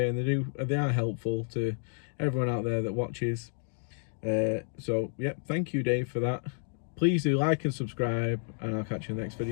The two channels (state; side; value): silent; right; digital silence